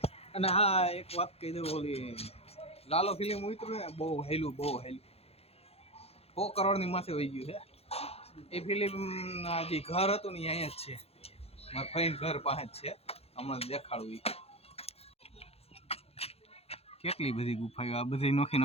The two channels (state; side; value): late; right; 0.29 ms